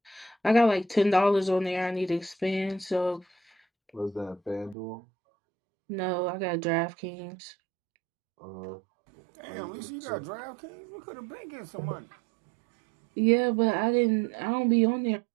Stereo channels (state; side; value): drops out; left; at 4.8 s